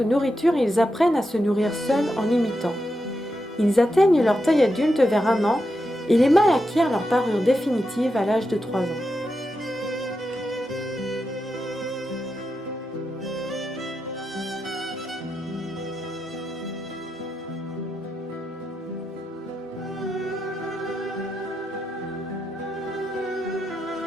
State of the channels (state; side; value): normal; both; correlation 0.87